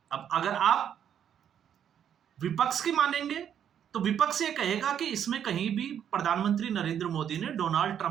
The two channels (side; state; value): left; quieter; 9.1 dB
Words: अब अगर आप विपक्ष की मानेंगे तो विपक्ष ये कहेगा कि इसमें कहीं भी प्रधानमंत्री नरेंद्र मोदी ने डोनाल्ड